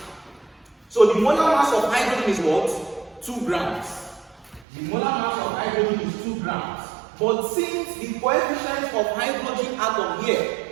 So the molar mass of hydrogen is what? 2 grams. The molar mass of hydrogen is 2 grams. But since the coefficient of hydrogen atom here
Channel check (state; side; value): drops out; left; at 4.7 s